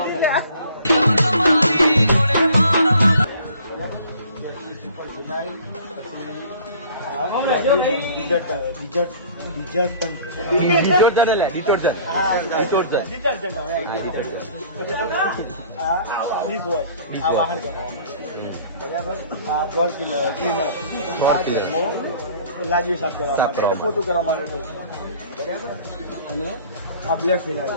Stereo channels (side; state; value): both; inverted; correlation -0.50